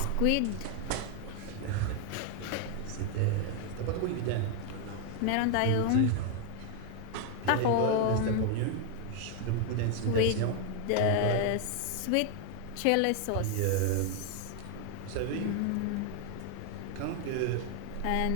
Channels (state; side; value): different; both; correlation 0.00